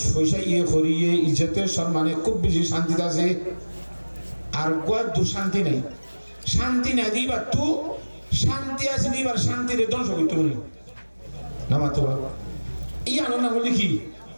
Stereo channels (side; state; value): both; inverted; correlation -1.00